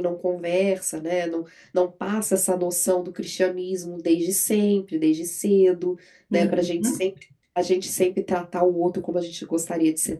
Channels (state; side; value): identical; both; correlation 1.00